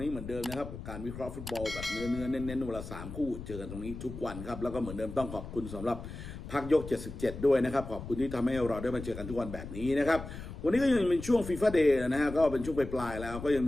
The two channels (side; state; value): left; noise; rumble, 10 dB below the sound